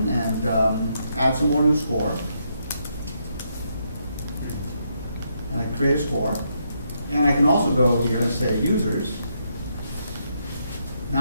and add some more new score. And I create a score. And I can also go here and say users. Now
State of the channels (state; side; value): inverted; both; correlation -0.78